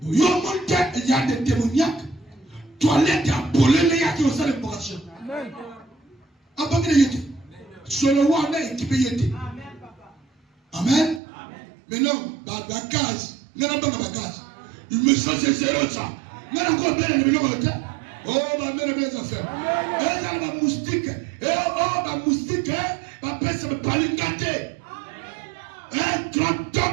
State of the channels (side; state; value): left; drops out; at 11.2 s